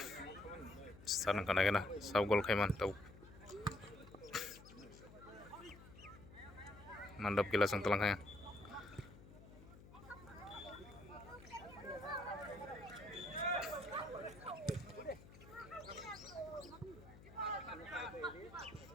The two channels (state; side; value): noise; left; hum, 18 dB below the sound